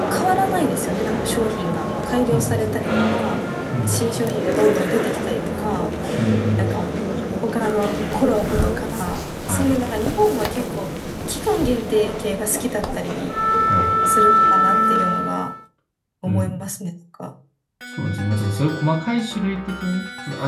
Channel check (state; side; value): identical; both; correlation 1.00